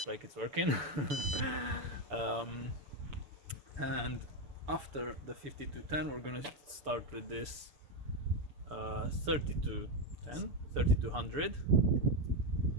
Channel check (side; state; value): left; late; 6.9 ms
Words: like it's working. um, and after the 5210 we're gonna start with this 3200.